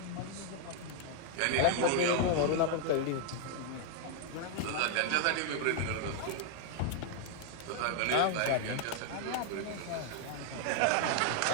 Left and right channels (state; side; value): different; both; correlation 0.00